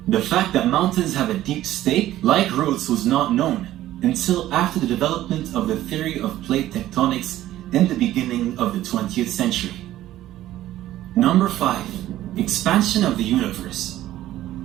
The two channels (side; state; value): left; quieter; 14.0 dB